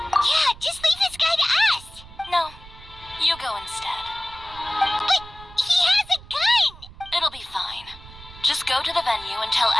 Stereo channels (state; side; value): noise; right; rumble, 19 dB below the sound